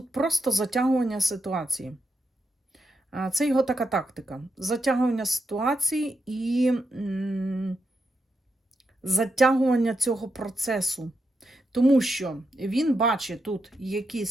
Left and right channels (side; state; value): both; normal; correlation 0.84